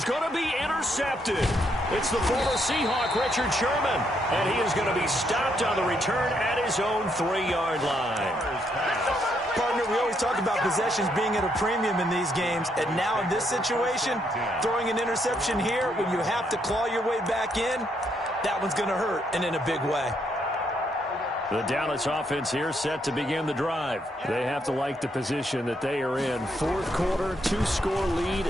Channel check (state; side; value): normal; both; correlation 0.75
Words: going to be intercepted. It's the former Seahawk, Richard Sherman. And he is going to be stopped on the return at his own 3-yard line. Partner, we always talk about possessions being at a premium in these games. And now in this situation, throwing an interception here when you have to claw your way back in, that one's going to hurt, and in a big way. The Dallas offense here set to begin the drive. They have to like the position that they are in. 4th quarter, 2-score lead,